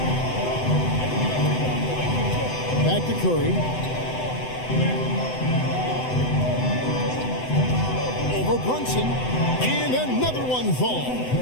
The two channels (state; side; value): late; right; 7.9 ms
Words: Back to Curry. Over Brunson. And another one